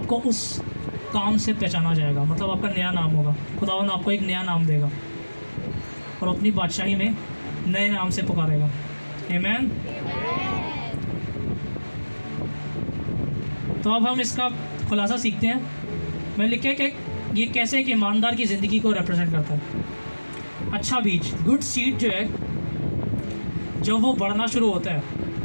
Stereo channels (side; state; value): both; inverted; correlation -1.00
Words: उस काम से पहचाना जाएगा। मतलब आपका नया नाम होगा, खुदावंद आपको एक नया नाम देगा और अपनी बादशाही में नए नाम से पुकारेगा। आमीन। तो अब हम इसका खुलासा सीखते हैं। मैंने लिखा है कि ये कैसे एक ईमानदार की ज़िंदगी को रिप्रेजेंट करता है। अच्छा बीज, गुड सीड जो है, जब वो बढ़ना शुरू होता है